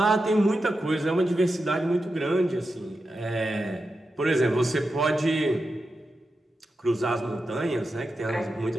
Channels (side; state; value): both; normal; correlation 0.89